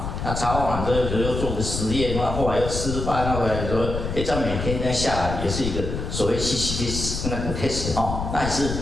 那查完之后又做个实验，然后后来又吃饭，那回来说，这样每天这样下来也是一个所谓西西里斯那个 test 哈，那也是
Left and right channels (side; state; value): left; noise; rumble, 4 dB below the sound